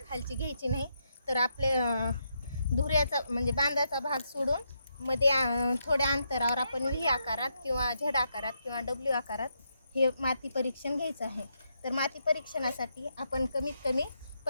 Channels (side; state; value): both; inverted; correlation -0.81